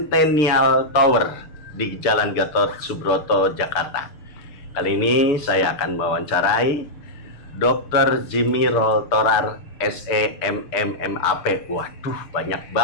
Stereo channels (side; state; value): right; late; 6.8 ms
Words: Tower di Jalan Gatot Subroto, Jakarta. Kali ini saya akan mewawancarai Dr. Jimmy Roll Torar, SEMMMAP. Waduh, banyak